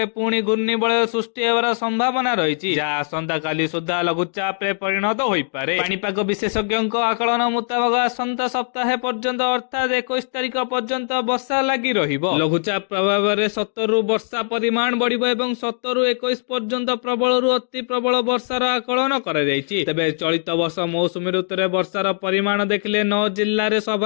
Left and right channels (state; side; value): silent; right; digital silence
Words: ପୁଣି ଘୂର୍ଣ୍ଣିବଳୟ ସୃଷ୍ଟି ହେବାର ସମ୍ଭାବନା ରହିଛି, ଯାହା ଆସନ୍ତାକାଲି ସୁଦ୍ଧା ଲଘୁଚାପରେ ପରିଣତ ହୋଇପାରେ। ପାଣିପାଗ ବିଶେଷଜ୍ଞଙ୍କ ଆକଳନ ମୁତାବକ ଆସନ୍ତା ସପ୍ତାହ ପର୍ଯ୍ୟନ୍ତ ଅର୍ଥାତ୍ 21 ତାରିଖ ପର୍ଯ୍ୟନ୍ତ ବର୍ଷା ଲାଗି ରହିବ। ଲଘୁଚାପ ପ୍ରଭାବରେ 70ରୁ ବର୍ଷା ପରିମାଣ ବଢିବ ଏବଂ 17ରୁ 21 ପର୍ଯ୍ୟନ୍ତ ପ୍ରବଳରୁ ଅତି ପ୍ରବଳ ବର୍ଷାର ଆକଳନ କରାଯାଇଛି। ତେବେ ଚଳିତ ବର୍ଷ ମୌସୁମୀ ଋତୁରେ ବର୍ଷାର ପରିମାଣ ଦେଖିଲେ 9 ଜିଲ୍ଲାରେ